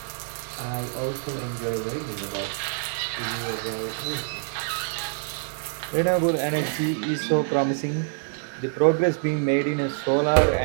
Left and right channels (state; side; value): silent; left; 61 dB below the other